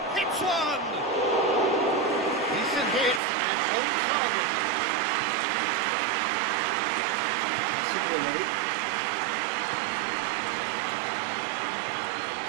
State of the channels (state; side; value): drops out; left; at 3.2 s